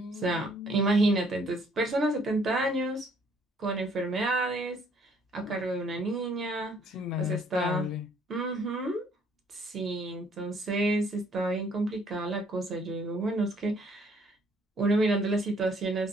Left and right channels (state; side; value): normal; both; correlation 0.63